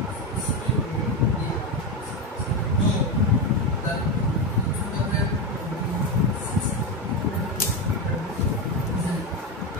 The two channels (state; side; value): normal; both; correlation 0.12